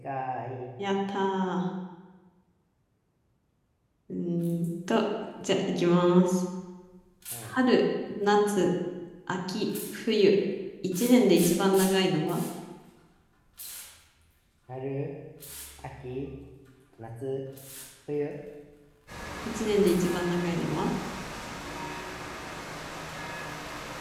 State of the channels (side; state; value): both; identical; correlation 1.00